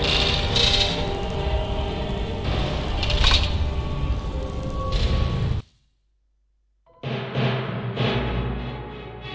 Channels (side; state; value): both; identical; correlation 1.00